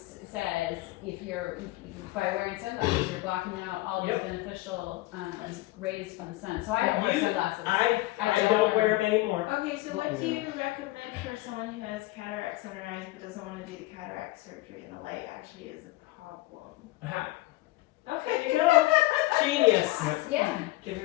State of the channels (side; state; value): right; quieter; 19.1 dB